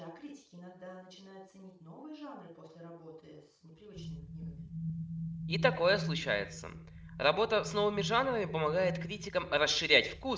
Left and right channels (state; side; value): identical; both; correlation 1.00